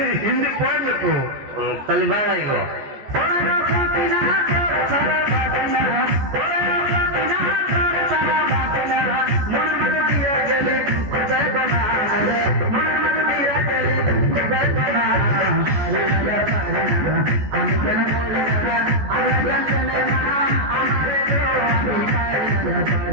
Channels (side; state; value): left; late; 14 ms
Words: हिंदी पढ़ ले तू तलिबान आई को